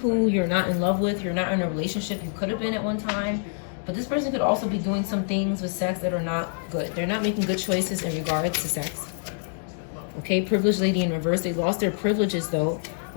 you're not in love with. You're not in a relationship. You could have been at one time. But this person could also be doing some things with sex that are not good. They're not making good choices in regards to sex. Okay, privileged lady in reverse. They lost their privileges though.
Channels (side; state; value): right; silent; digital silence